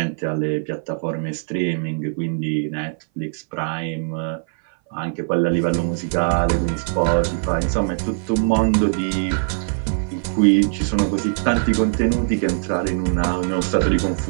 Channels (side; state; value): left; silent; 60 dB below the other